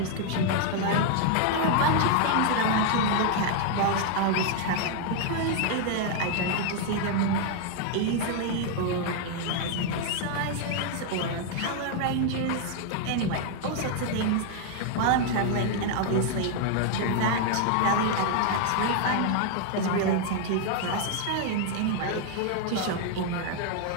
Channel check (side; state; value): both; different; correlation 0.00